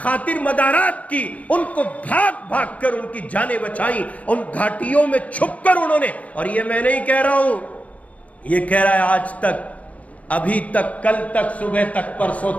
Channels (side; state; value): right; late; 0.067 ms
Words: مدارات کی، ان کو بھاگ بھاگ کر ان کی جانیں بچائیں، ان گھاٹیوں میں چھپ کر انہوں نے، اور یہ میں نہیں کہہ رہا ہوں، یہ کہہ رہا ہے آج تک، ابھی تک، کل تک، صبح تک، پرسوں